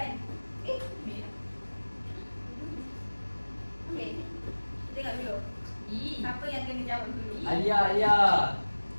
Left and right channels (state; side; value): inverted; both; correlation -1.00